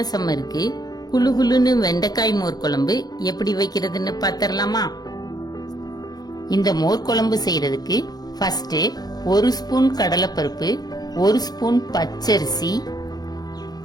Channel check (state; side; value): late; right; 0.19 ms